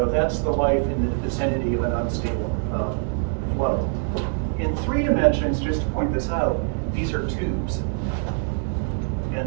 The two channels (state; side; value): silent; left; 55 dB below the other